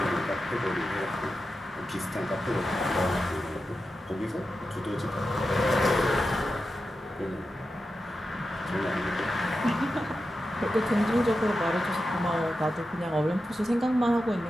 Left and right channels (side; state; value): both; normal; correlation 0.90